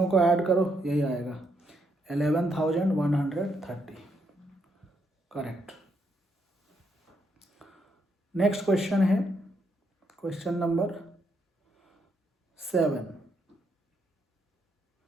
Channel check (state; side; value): normal; both; correlation 0.76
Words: को ऐड करो यही आएगा 11,130। करेक्ट। नेक्स्ट क्वेश्चन है question number 7।